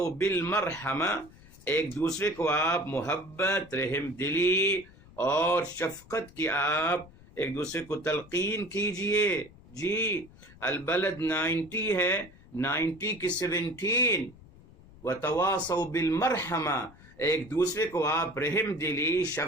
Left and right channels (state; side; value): noise; left; rumble, 23 dB below the sound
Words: بالمرحمہ، ایک دوسرے کو آپ محبت، رحم دلی اور شفقت کی آپ ایک دوسرے کو تلقین کیجئے. جی البلد 90 ہے، 90 کی 17 وتواصوا بالمرحمہ، ایک دوسرے کو آپ رحم دلی،